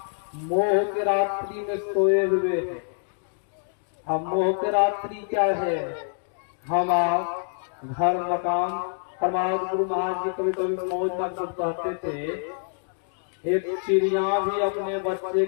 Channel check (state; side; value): silent; right; digital silence